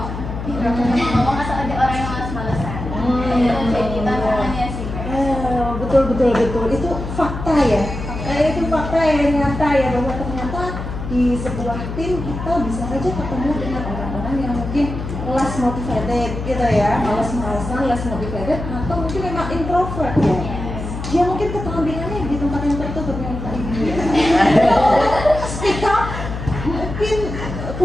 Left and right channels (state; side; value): noise; left; hum, 7 dB below the sound